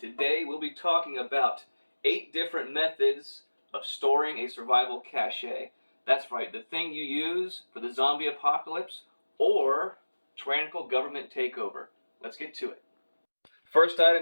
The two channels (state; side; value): inverted; both; correlation -1.00